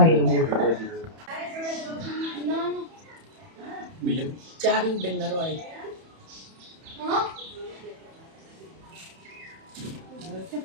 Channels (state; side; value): late; left; 31 ms